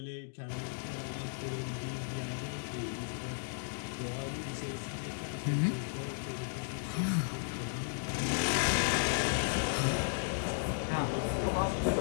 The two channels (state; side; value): silent; right; digital silence